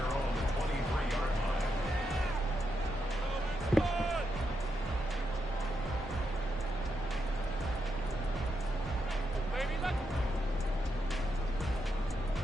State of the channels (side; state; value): both; normal; correlation 0.83